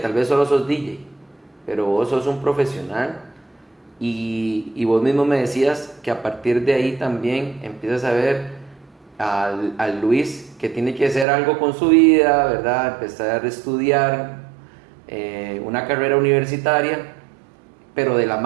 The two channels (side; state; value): left; drops out; at 11.2 s